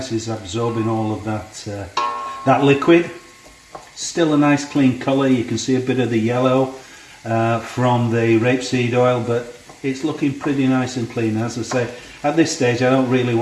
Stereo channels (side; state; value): both; identical; correlation 1.00